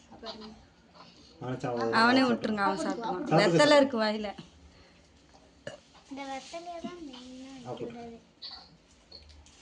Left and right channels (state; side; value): identical; both; correlation 1.00